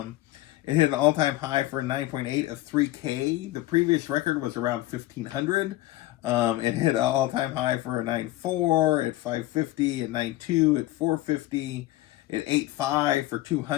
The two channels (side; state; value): right; quieter; 16.8 dB